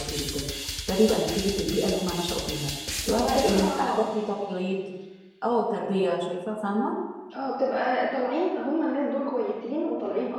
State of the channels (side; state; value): both; identical; correlation 1.00